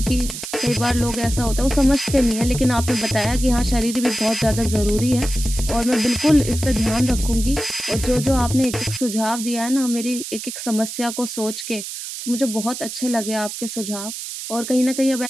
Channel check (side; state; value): right; noise; hiss, 8 dB below the sound